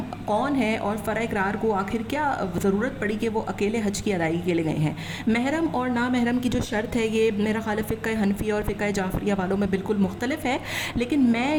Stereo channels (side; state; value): both; identical; correlation 1.00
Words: کون ہے، اور فرح اقرار کو آخر کیا ضرورت پڑی کہ وہ اکیلے حج کی ادائیگی کے لیے گئے ہیں؟ محرم اور نامحرم کی جو شرط ہے یہ میرا خیال ہے فقہ حنفیہ اور فقہ جعفریہ والوں میں بالکل مختلف ہے، لیکن میں